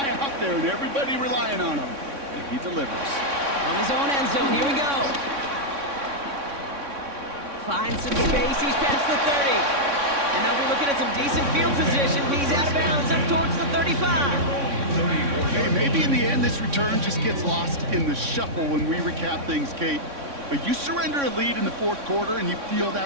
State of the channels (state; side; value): late; left; 3.6 ms